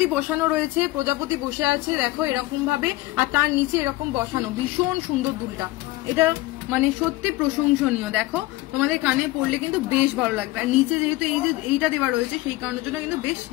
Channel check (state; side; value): quieter; right; 18.7 dB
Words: বসানো রয়েছে, প্রজাপতি বসে আছে দেখো এরকম ভাবে, আর তার নিচে এরকম বসানো, ভীষণ সুন্দর দুলটা। এটা মানে সত্যি প্রশংসনীয়। দেখো তোমাদের কানে পড়লে কিন্তু বেশ ভালো লাগবে। আর নিচে যেহেতু এই যে এইটা দেওয়া রয়েছে সেই কারণের জন্য কিন্তু বেশ